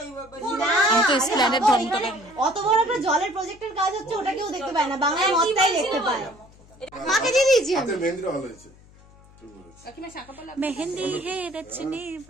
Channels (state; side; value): noise; left; hum, 25 dB below the sound